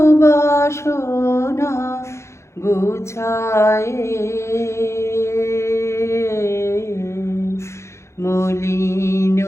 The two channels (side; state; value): right; late; 0.13 ms